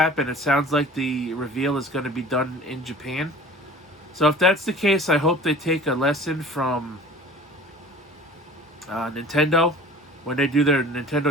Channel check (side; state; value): both; normal; correlation 0.43